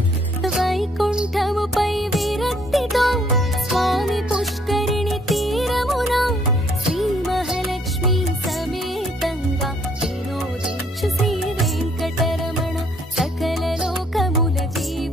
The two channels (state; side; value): normal; both; correlation 0.65